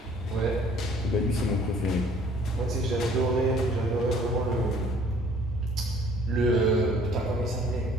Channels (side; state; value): both; normal; correlation 0.56